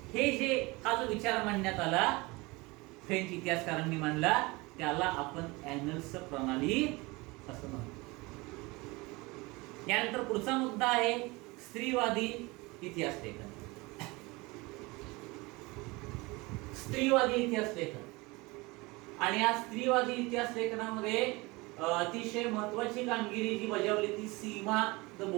हे जे हा जो विचार मांडण्यात आला, फ्रेंच इतिहासकारांनी मांडला, त्याला आपण ॲनल्स प्रणाली असं म्हणतो. यानंतर पुढचा मुद्दा आहे स्त्रीवादी इतिहास लेखन. स्त्रीवादी इतिहास लेखन आणि या स्त्रीवादी इतिहास लेखनामध्ये अतिशय महत्वाची कामगिरी जी बजावली ती सीमा द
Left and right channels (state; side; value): quieter; left; 23.9 dB